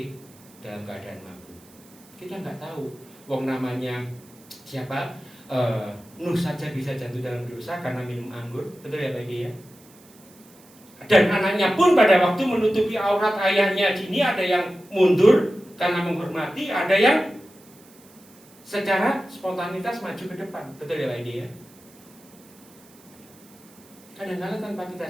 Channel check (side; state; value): right; noise; hiss, 26 dB below the sound